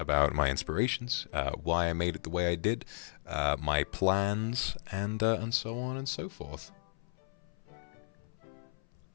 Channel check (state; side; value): silent; right; 55 dB below the other